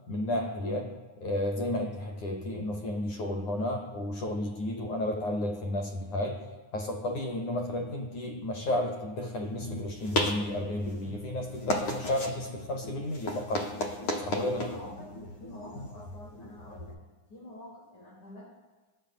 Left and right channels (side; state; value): right; late; 9.7 ms